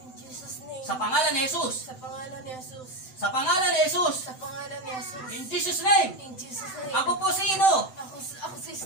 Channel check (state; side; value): late; right; 7.8 ms